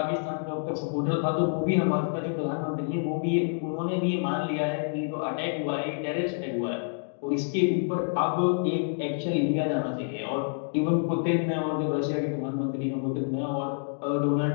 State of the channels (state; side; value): silent; right; digital silence